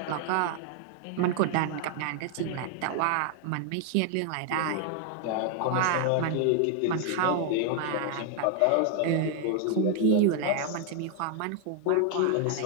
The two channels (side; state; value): both; different; correlation 0.00